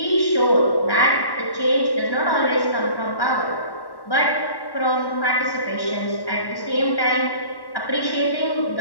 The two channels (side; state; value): right; late; 1.1 ms